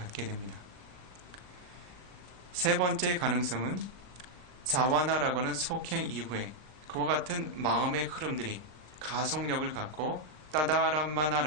됩니다. 세 번째 가능성은 자와나라고 하는 속행 이후에 그와 같은 마음의 흐름들이 가속력을 갖고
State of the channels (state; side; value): late; left; 39 ms